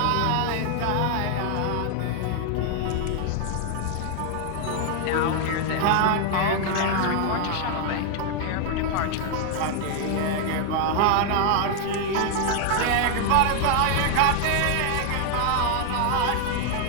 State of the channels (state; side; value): different; both; correlation 0.00